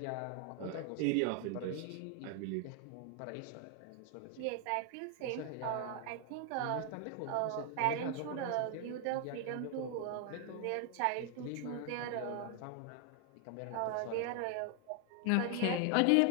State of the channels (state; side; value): different; both; correlation 0.00